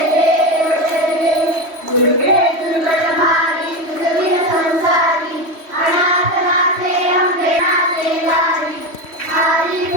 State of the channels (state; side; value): late; left; 3.1 ms